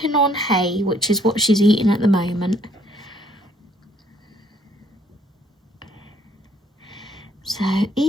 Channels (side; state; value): both; normal; correlation 0.64